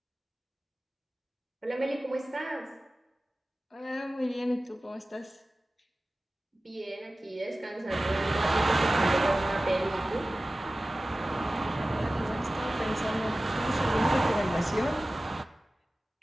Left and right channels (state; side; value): normal; both; correlation 0.96